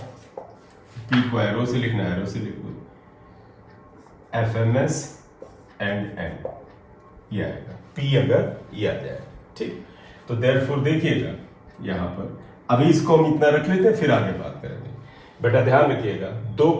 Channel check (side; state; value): both; identical; correlation 1.00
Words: P को एरो से लिखना, एरो से लिखो, Fms एंड n, ये आएगा P, अगर ये आ जाए, ठीक। तो देयरफॉर देखिएगा यहां पर, अभी इसको हम इतना रख लेते हैं, फिर आगे बात करेंगे। बेटा ध्यान रखिएगा, दो